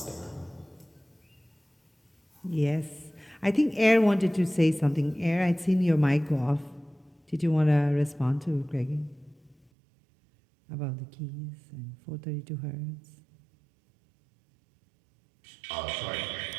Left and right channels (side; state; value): left; drops out; at 9.6 s